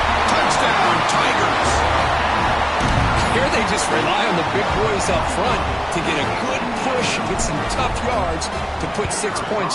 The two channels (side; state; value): both; identical; correlation 1.00